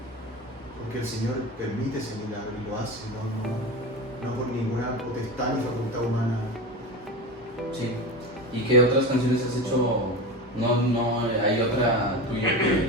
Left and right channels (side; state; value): both; normal; correlation 0.25